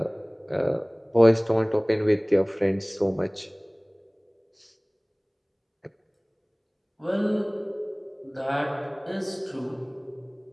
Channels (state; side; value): identical; both; correlation 1.00